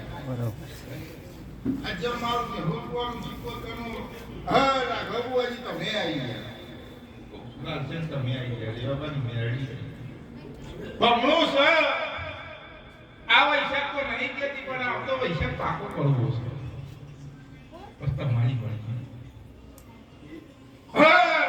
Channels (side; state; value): both; identical; correlation 1.00